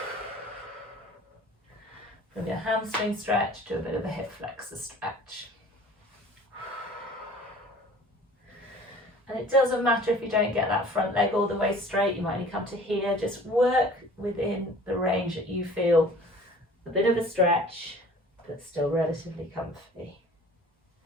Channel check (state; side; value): normal; both; correlation 0.47